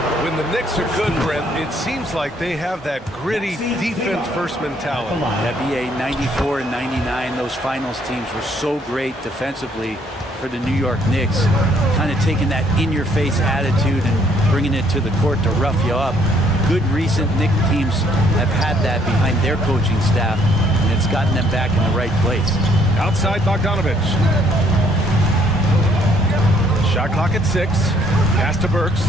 When the Knicks are good, Brent, it seems like they have that gritty defense-first mentality. NBA 94 and 99, those finals teams were so great defensively for the New York Knicks. Kind of taking that in-your-face attitude and bringing it to the court to rough you up. Good recent Knicks teams have had that behind their coaching staff, and it's gotten them back in the right place. Outside Bogdanovich. Shot clock at 6. Pass to Burks.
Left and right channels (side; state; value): both; normal; correlation 0.66